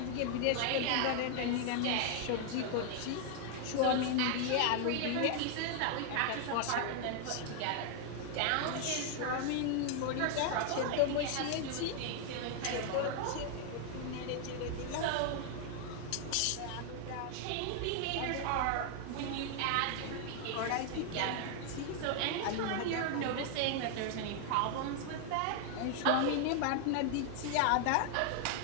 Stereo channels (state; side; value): different; both; correlation 0.00